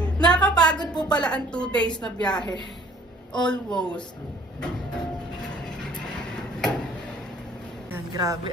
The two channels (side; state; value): both; normal; correlation 0.56